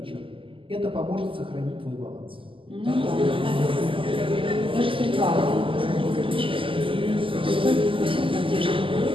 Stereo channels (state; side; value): late; left; 0.25 ms